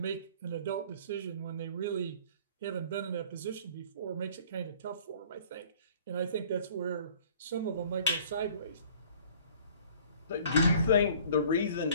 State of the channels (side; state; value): both; inverted; correlation -0.52